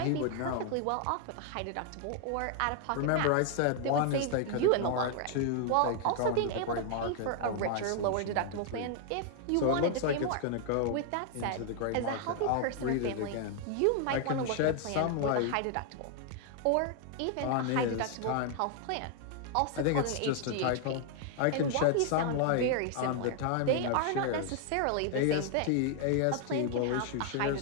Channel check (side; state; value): both; different; correlation 0.00